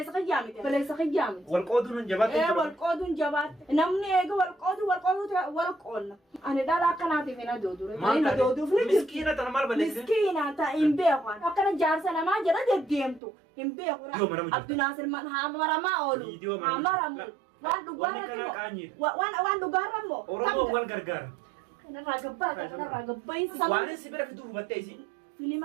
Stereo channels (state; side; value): drops out; left; at 13.2 s